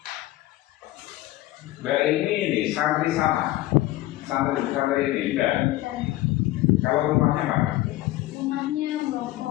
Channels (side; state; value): right; quieter; 16.6 dB